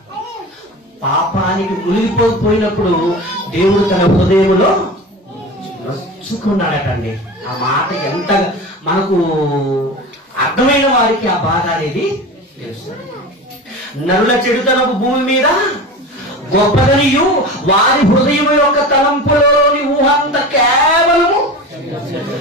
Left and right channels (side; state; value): both; normal; correlation 0.31